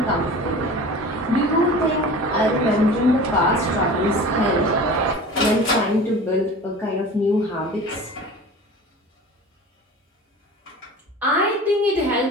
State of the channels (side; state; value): both; normal; correlation 0.38